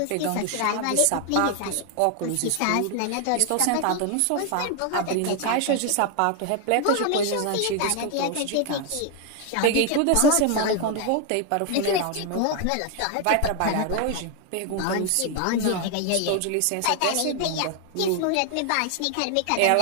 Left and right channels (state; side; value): different; both; correlation 0.01